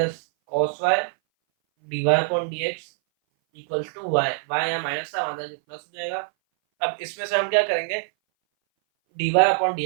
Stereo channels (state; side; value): silent; left; 59 dB below the other